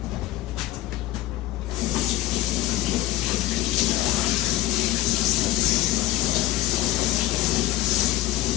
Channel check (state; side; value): quieter; right; 15.7 dB